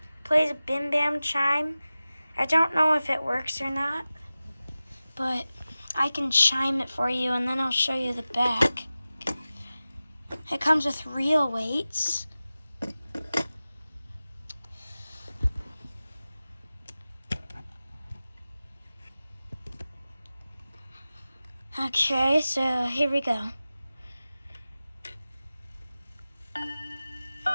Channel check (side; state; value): both; inverted; correlation -0.96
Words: It plays a bim bam chime. I don't know if it works or not, but I can chime it for you, and then I'll show you the back. It comes with real weights. Okay, so here we go. I'm